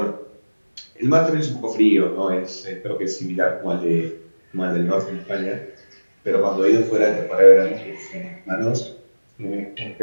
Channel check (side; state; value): both; inverted; correlation -1.00